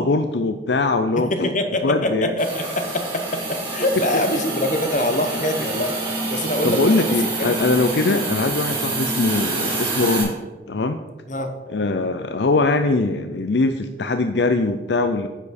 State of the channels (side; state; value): both; normal; correlation 0.25